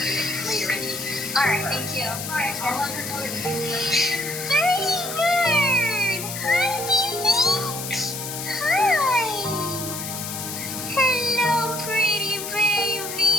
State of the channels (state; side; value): noise; left; hiss, 6 dB below the sound